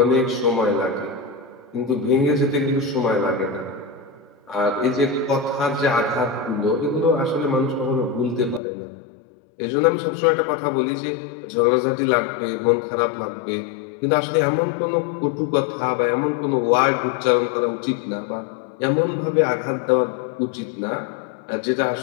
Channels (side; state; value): right; drops out; at 8.6 s